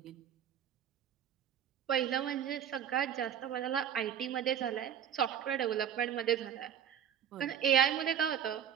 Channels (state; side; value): quieter; left; 9.0 dB